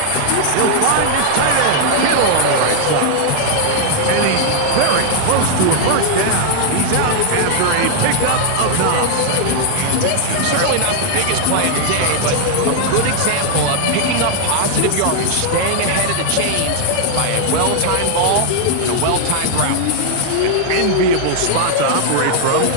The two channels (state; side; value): different; both; correlation -0.01